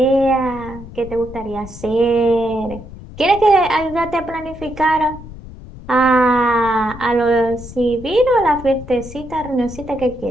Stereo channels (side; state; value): left; noise; rumble, 15 dB below the sound